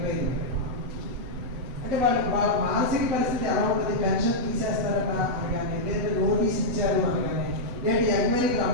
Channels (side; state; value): left; late; 8.0 ms